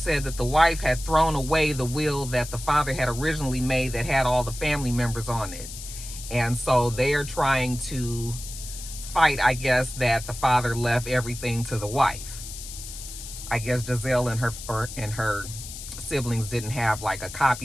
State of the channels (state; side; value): noise; left; hiss, 11 dB below the sound